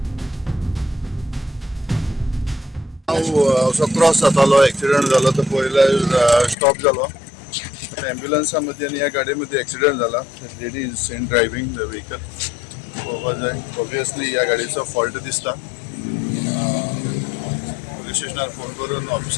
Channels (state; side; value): drops out; right; at 6.6 s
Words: असो क्रॉस जातालो एक्सिडेंट जालो तो पयले स्टॉप जालो। एम्ब्युलन्सा मध्ये आणि या गाडीमध्ये एक्सिडेंट झाला। Lady is in driving the vehicle. पळोवपाक जाय ऑब्वियसली या गाडीचो फॉल्ट दिसता। पुलीस स्टेशनार फोन करून